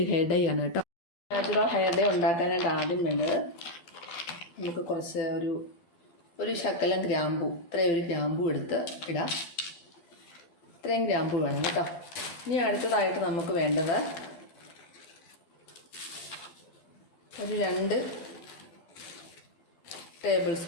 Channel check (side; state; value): right; late; 12 ms